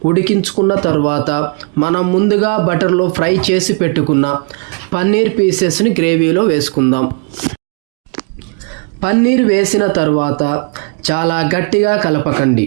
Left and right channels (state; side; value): quieter; left; 32.6 dB